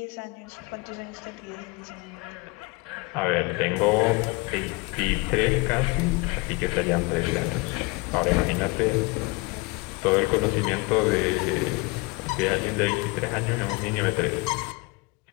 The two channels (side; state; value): right; quieter; 25.7 dB